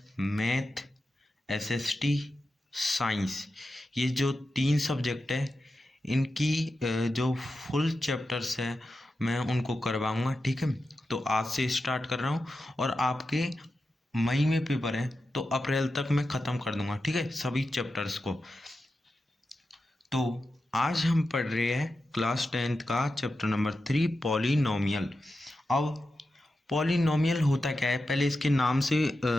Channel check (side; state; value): both; normal; correlation 0.91